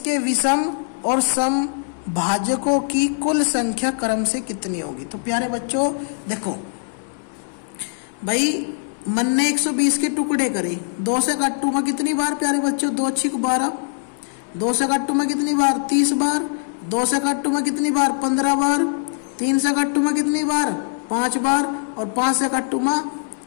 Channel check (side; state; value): right; silent; digital silence